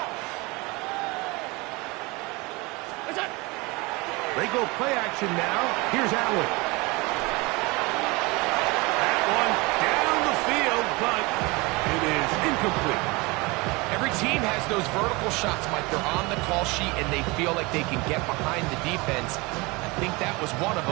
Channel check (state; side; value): quieter; left; 25.0 dB